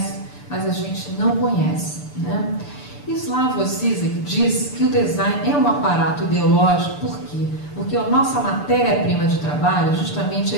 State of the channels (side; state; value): right; late; 6.8 ms